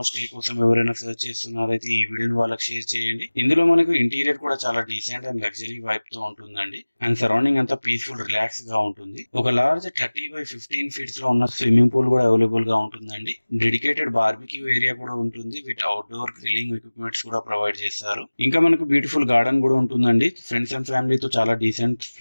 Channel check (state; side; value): inverted; both; correlation -1.00